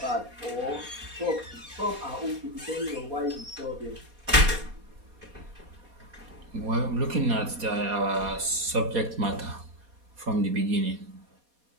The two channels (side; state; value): left; late; 4.2 ms